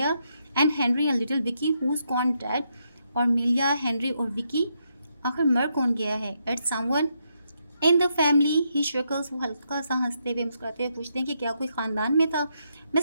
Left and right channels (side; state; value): both; inverted; correlation -0.79